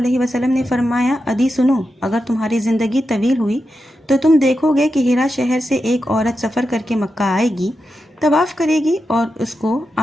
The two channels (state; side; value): normal; both; correlation 0.89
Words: وسلم نے فرمایا، عدی سنو، اگر تمہاری زندگی طویل ہوئی تو تم دیکھو گے کہ ہیرا شہر سے ایک عورت سفر کر کے مکہ آئے گی، طواف کرے گی، اور اس کو